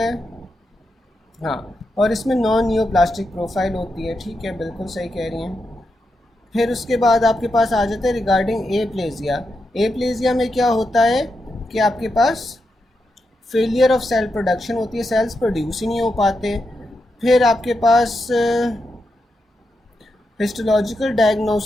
है, हाँ। और इसमें नॉन न्यूप्लास्टिक प्रोफाइल होती है, ठीक है, बिल्कुल सही कह रही हैं। फिर उसके बाद आपके पास आ जाता है रिगार्डिंग एप्लेजिया। एप्लेजिया में क्या होता है कि आपके पास फेलियर ऑफ सेल प्रोडक्शन होती है, सेल्स प्रोड्यूस ही नहीं हो पाते। फिर आपके पास histological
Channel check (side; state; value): both; normal; correlation 0.86